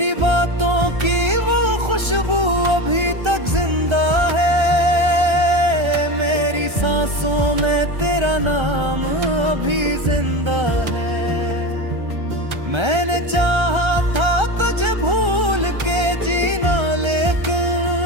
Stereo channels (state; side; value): late; left; 1.3 ms